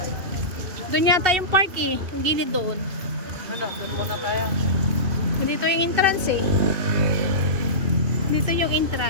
Doon yata yung park eh, yung gilid doon. Dito yung entrance eh. Dito yung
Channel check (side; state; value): left; late; 2.7 ms